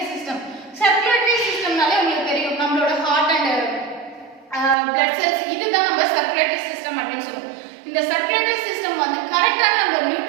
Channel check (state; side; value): drops out; left; at 4.8 s